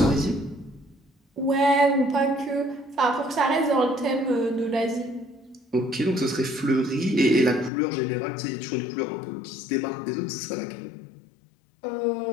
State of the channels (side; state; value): right; drops out; at 7.7 s